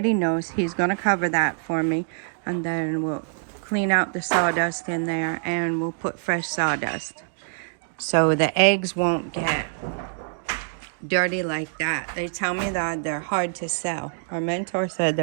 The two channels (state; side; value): silent; left; digital silence